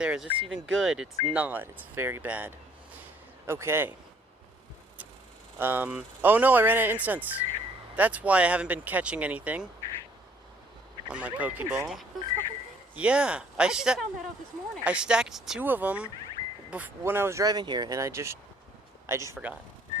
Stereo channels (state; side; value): normal; both; correlation 0.61